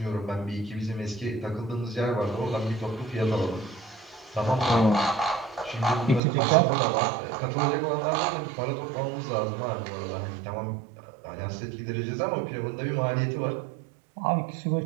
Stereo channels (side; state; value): left; drops out; at 6.2 s